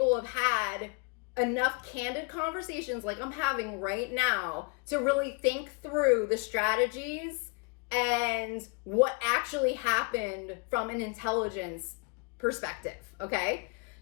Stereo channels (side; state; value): right; quieter; 32.2 dB